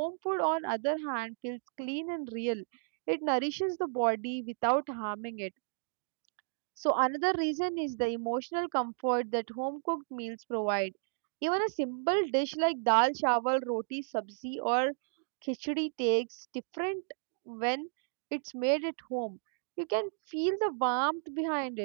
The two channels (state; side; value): silent; left; digital silence